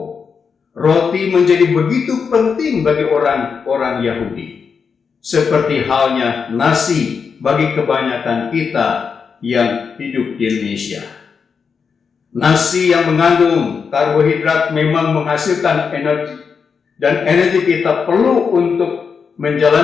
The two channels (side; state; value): right; quieter; 5.9 dB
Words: Roti menjadi begitu penting bagi orang-orang Yahudi, seperti halnya nasi bagi kebanyakan kita yang hidup di Indonesia. Nasi yang mengandung karbohidrat memang menghasilkan energi, dan energi kita perlu untuk